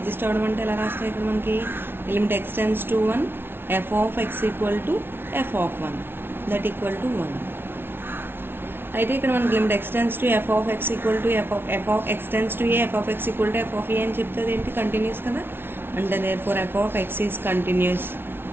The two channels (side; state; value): left; late; 0.11 ms